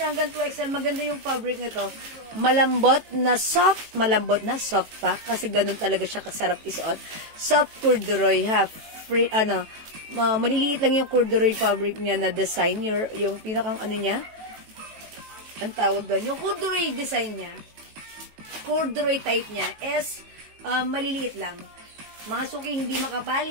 hanggang 2XL. Maganda yung fabric nito. Malambot na soft pack. Kasi ganun talaga siya kasarap isuot. Soft corduroy, ha? Free, maliliit lang yung corduroy fabric niya na design. Yung pinakang niya. Ang tawag doon. Yung corduroy design niya. Corduroy type niya is maliliit lang. Mga suki, hindi makapal,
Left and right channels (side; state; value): left; late; 18 ms